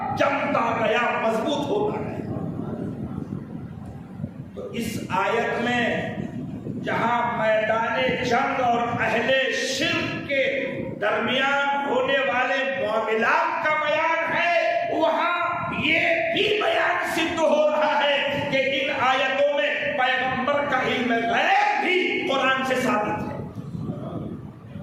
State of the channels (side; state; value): both; identical; correlation 1.00